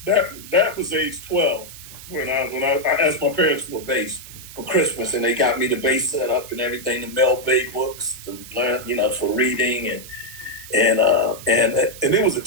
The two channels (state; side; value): noise; right; hiss, 15 dB below the sound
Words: was age 12. When I asked my parents for a bass for Christmas, and they got me the bass set up and everything, the Mel Bay books to learn, for reading, and it was a